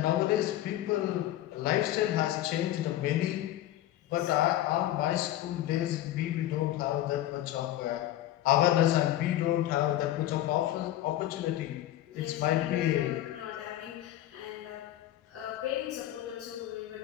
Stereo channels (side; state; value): right; quieter; 13.6 dB